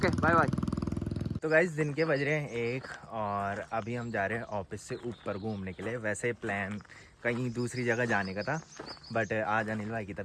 बाय बाय। तो गाइस दिन के बज रहे हैं 1 और अभी हम जा रहे हैं ऑफिस से ऊपर घूमने के लिए। वैसे प्लान कहीं दूसरी जगह जाने का था, बट आज अनिल भाई की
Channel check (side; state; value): both; identical; correlation 1.00